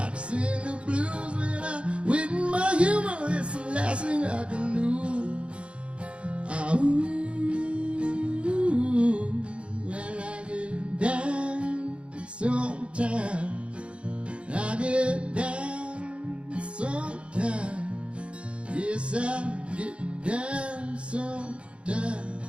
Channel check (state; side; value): late; left; 0.059 ms